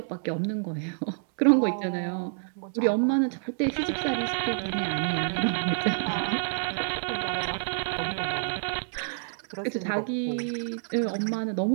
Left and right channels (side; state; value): left; silent; 59 dB below the other